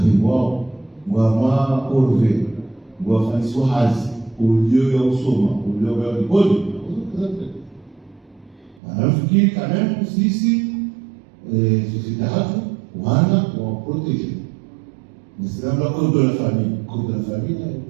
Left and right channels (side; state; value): left; drops out; at 8.8 s